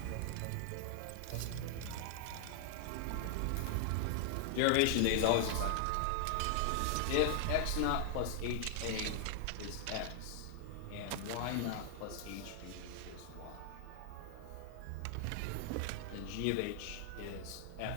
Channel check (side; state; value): both; different; correlation -0.01